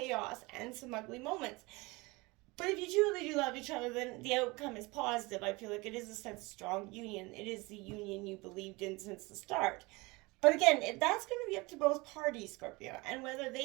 and some ugly moments. But if you truly do love each other, then the outcome is positive. I feel like it is a sense of strong union. It is the union you believed in since the start. But again, that's going to be up to both parties, Scorpio, and whether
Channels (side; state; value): left; quieter; 24.1 dB